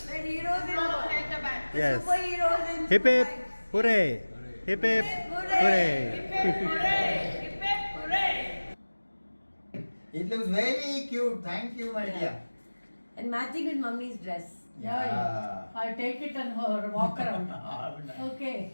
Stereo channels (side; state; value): both; inverted; correlation -1.00